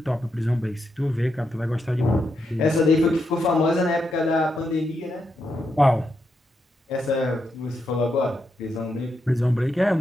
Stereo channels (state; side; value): normal; both; correlation 0.83